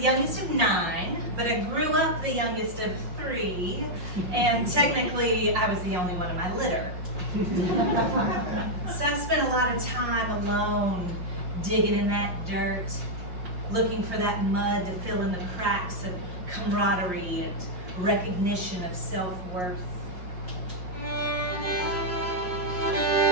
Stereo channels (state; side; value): late; left; 5.6 ms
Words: youngest of 9, but I grew up the youngest of 3, and technically I was the only one in my litter. So I spent a lot of time alone, digging in that dirt, looking for that mud to fill in the cracks of camaraderie and recognition of self-worth.